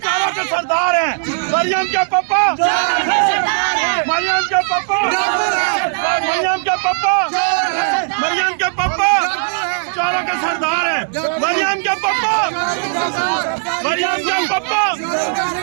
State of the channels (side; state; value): left; silent; digital silence